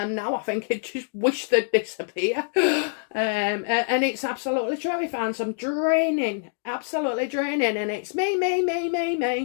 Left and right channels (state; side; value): silent; right; digital silence